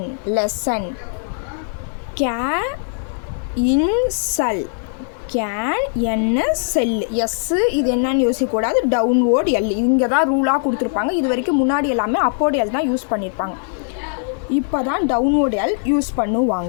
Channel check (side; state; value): right; silent; 62 dB below the other